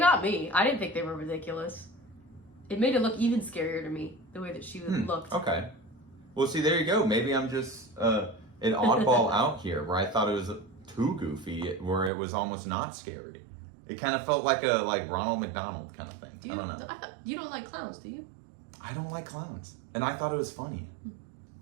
me. I didn't think they were ridiculous. It made it look even scarier to me, the way that she looked. Okay. Well, see, there you go. Maybe I'm just an oddball out here, where I thought it was too goofy, where it was almost not scary. It kind of felt like a Ronald McDonald kind of thing. I don't know. You don't like clowns, do you? I don't like clowns, and I thought it was funny.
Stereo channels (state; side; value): drops out; left; at 12.1 s